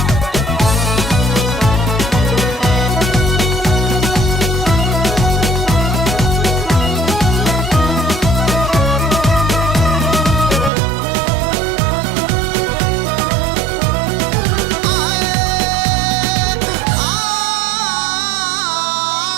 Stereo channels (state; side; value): drops out; left; at 10.7 s